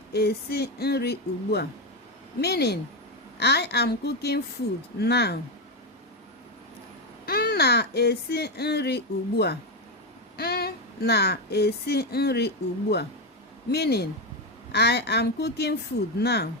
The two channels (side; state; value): both; normal; correlation 0.10